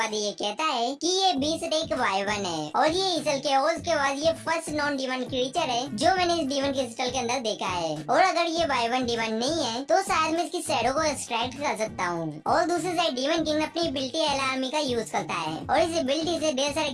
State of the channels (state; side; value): identical; both; correlation 1.00